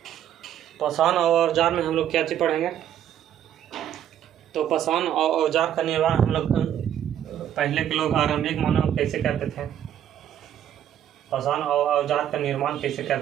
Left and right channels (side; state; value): left; quieter; 10.4 dB